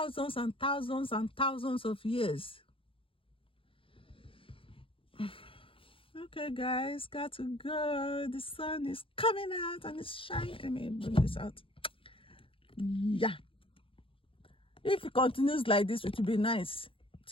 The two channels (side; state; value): right; late; 0.26 ms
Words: and thousands and thousands of years. Okay, guys, got to go. The sun is coming out and it's shining. Let me bring this out. Yeah. If it continues like this, it will be nice